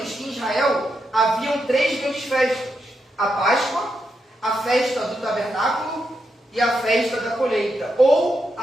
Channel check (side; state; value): both; normal; correlation 0.84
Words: que em Israel haviam 3 grandes festas: a Páscoa, a festa do tabernáculo e a festa da colheita, ou